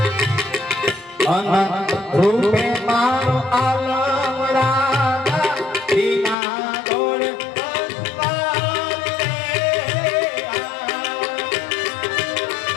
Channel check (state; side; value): drops out; right; at 6.4 s